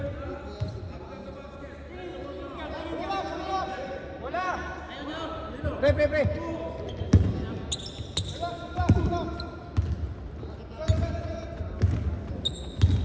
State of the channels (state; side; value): identical; both; correlation 1.00